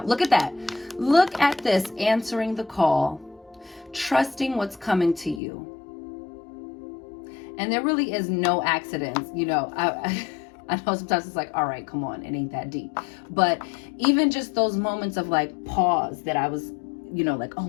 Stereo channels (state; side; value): drops out; right; at 5.4 s